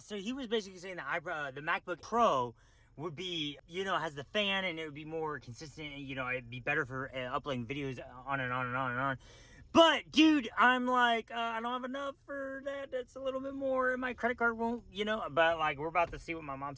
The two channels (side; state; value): both; identical; correlation 1.00